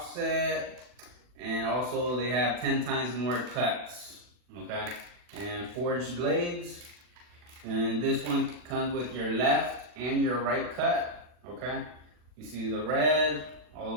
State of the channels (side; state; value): left; late; 40 ms